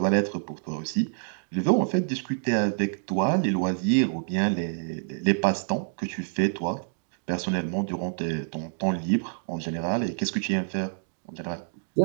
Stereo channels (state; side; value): silent; left; 60 dB below the other